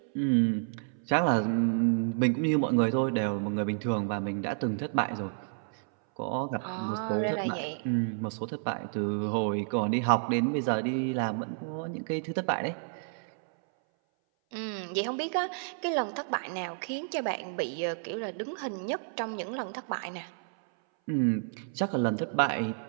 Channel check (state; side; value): silent; left; 57 dB below the other